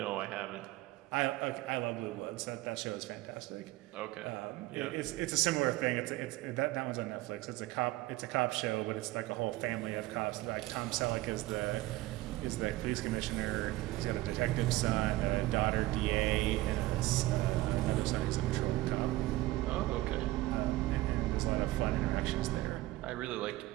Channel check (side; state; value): left; quieter; 17.9 dB